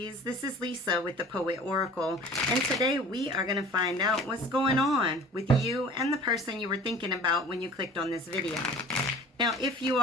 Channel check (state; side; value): normal; both; correlation 0.44